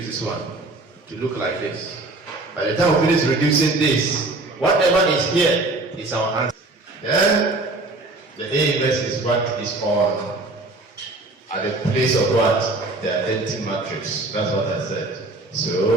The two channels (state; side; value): quieter; left; 3.0 dB